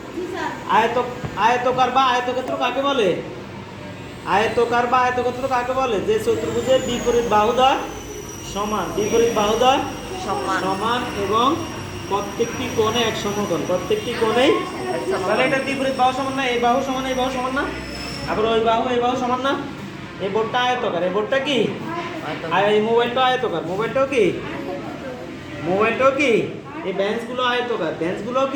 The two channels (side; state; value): both; identical; correlation 1.00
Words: আয়তকার বা আয়তক্ষেত্র কাকে বলে? আয়তকার বা আয়তক্ষেত্র কাকে বলে? যে চতুর্ভুজের বিপরীত বাহুদ্বয় সমান, বিপরীত বাহুদ্বয় সমান এবং প্রত্যেকটি কোণে এক সমকোণ। প্রত্যেকটি কোণেই, তাহলে এটা বিপরীত বাহু সমান না? এই বাহু সমান এই বাহু সমান না? আবার ওই বাহু এই বাহু সমান না? এই বোর্ডটা আয়তকার। এই বোর্ডটা কি? আর এই মোবাইলটা আয়তকার। মোবাইলটাও কি? মোবাইলটাও কি? এই বেঞ্চগুলো আয়তকার। বেঞ্চগুলো